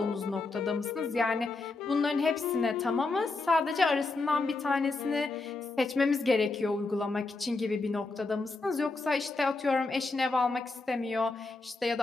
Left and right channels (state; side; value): quieter; right; 3.6 dB